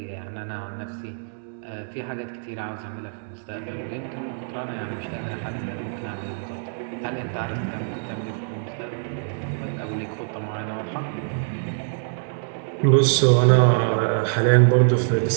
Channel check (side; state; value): left; silent; digital silence